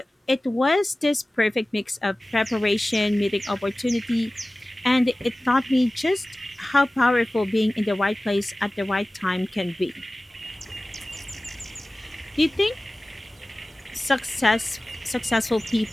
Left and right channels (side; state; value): both; normal; correlation 0.97